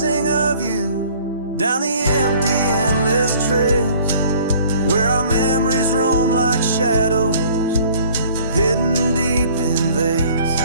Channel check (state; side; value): inverted; both; correlation -0.53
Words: of you down the empty, endless trails where our memories roam like shadows hidden deep in veils.